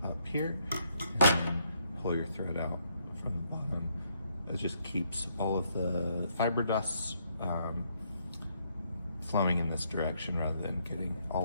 up here and then pull your thread out from the bottom. It just keeps all of the fiber dusts flowing in this direction rather than getting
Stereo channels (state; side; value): inverted; both; correlation -0.73